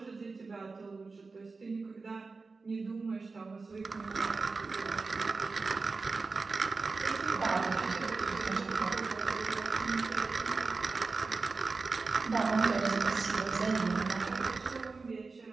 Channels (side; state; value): left; quieter; 4.1 dB